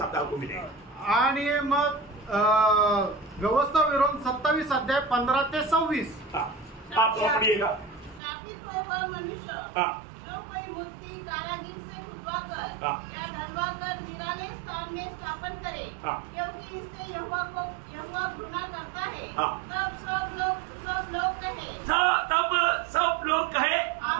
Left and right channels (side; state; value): left; drops out; at 8.2 s